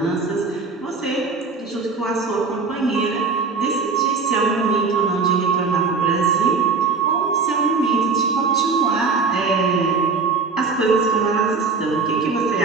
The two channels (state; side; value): quieter; left; 4.7 dB